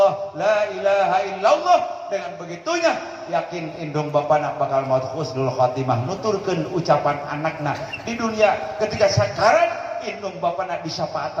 la ilaha illallah. Dengan begitunya yakin indung bapana bakal maut husnul khatimah nuturkeun ucapan anakna di dunia ketika sakarat indung bapana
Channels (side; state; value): both; identical; correlation 1.00